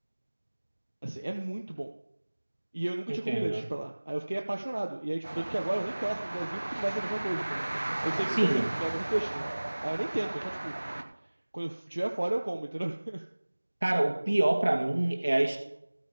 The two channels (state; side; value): inverted; both; correlation -1.00